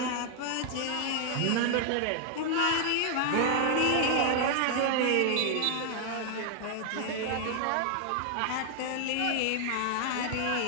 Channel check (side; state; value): both; different; correlation 0.00